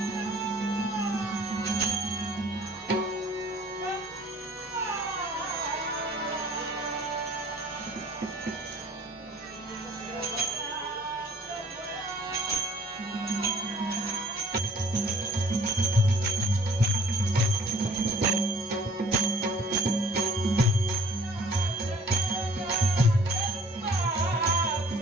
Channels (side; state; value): both; normal; correlation 0.54